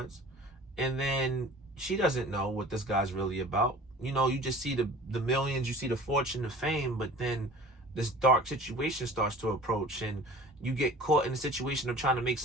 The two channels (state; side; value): normal; both; correlation 0.43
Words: and then she doesn't know what this guy's really about. You just see the millions, you see the fortune, the fame, but then this dark situation starts to approach, and you get caught in the situation of trying to make